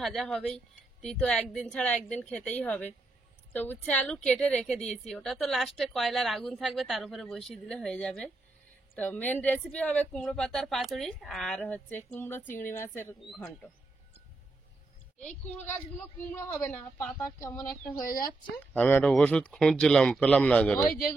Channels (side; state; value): left; quieter; 3.2 dB